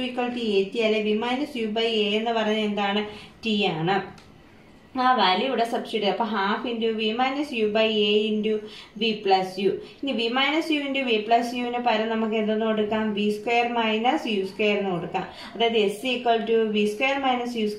equal to AT അല്ലെ V minus U by A എന്ന് പറയുന്നത് എന്താണ്? T ആണ്. ആ വാല്യൂ ഇവിടെ സബ്സ്റ്റിറ്റ്യൂട്ട് ചെയ്യാം. അപ്പോൾ half into V minus U by A into V plus U. ഇനി V minus U into V plus യുവിന് പകരം നമുക്ക് എന്തെന്ന് കൊടുക്കാം? V square minus U square എന്ന് കൊടുക്കാം. അതായത് S equal to V square minus U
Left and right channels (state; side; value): identical; both; correlation 1.00